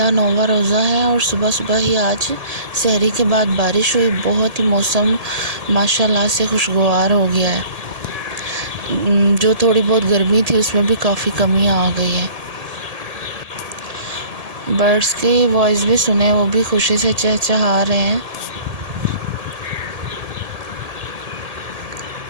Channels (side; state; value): left; late; 1.8 ms